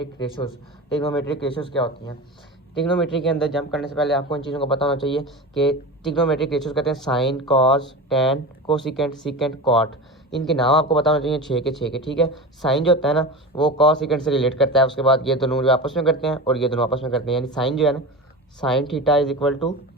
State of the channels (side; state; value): both; normal; correlation 0.28